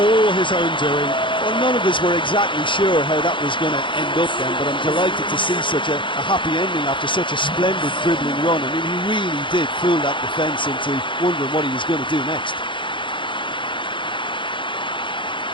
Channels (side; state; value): right; late; 0.24 ms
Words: his own doing. Well, none of us were exactly sure how that was going to end up then, but I'm delighted to see such a happy ending after such a splendid dribbling run. I mean, he really did fool that defence into wondering what he was going to do next.